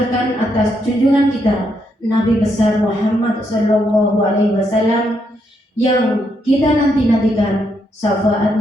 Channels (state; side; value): normal; both; correlation 0.77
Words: atas junjungan kita Nabi besar Muhammad Sallallahu Alaihi Wasallam yang kita nantikan